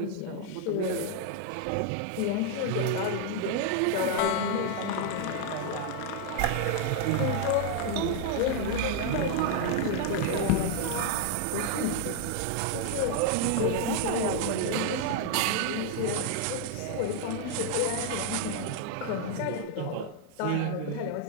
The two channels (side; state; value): both; different; correlation 0.00